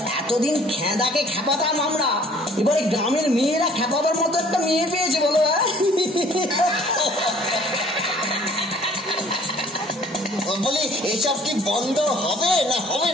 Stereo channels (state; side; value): normal; both; correlation 0.55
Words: এতদিন খেদাকে খেপাতাম আমরা, এবারে গ্রামের মেয়েরা খেপাবার মতো একটা মেয়ে পেয়েছে বলো। বলি এসব কি বন্ধ হবে না হবে